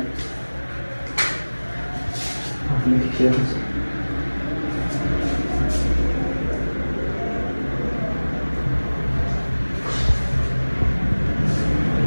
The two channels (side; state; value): both; inverted; correlation -1.00